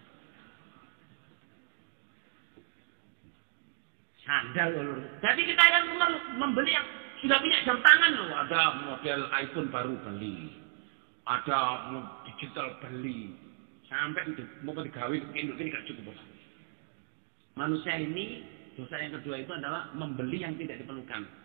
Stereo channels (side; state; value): left; silent; 55 dB below the other